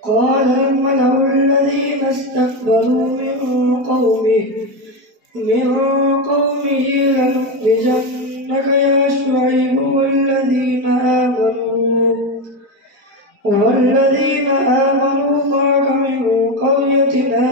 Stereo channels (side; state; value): left; late; 4.4 ms